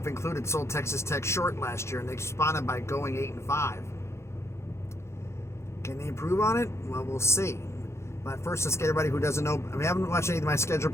included, sold Texas Tech short last year, and they responded by going 8-5. Can they improve on it? Well, we'll see. But first, let's get everybody who doesn't know. I haven't watched any of my schedule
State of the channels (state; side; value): late; right; 0.13 ms